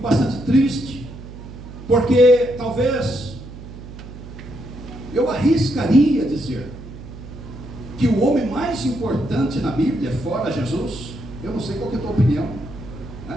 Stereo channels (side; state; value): right; noise; hum, 14 dB below the sound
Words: bastante triste, porque talvez eu arriscaria dizer que o homem mais importante na Bíblia, fora Jesus, eu não sei qual que é a tua opinião,